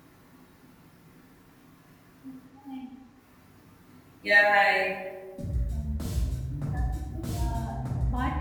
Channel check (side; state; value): both; identical; correlation 1.00